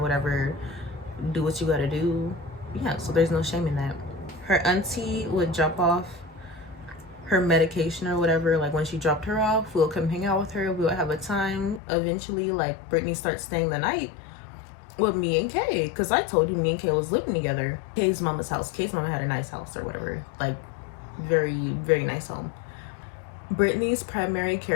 Do what you gotta do. Yeah, so there's no shame in that. Her auntie would drop off her medication or whatever. Like when she dropped her off, we'll come hang out with her. We'll have a time. Eventually, like Brittany starts staying the night with me and Kay, because I told you me and Kay was living together. Kay's mama's house. Kay's mama had a nice house or whatever. Like very, very nice home. Brittany's primary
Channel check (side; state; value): right; drops out; at 11.8 s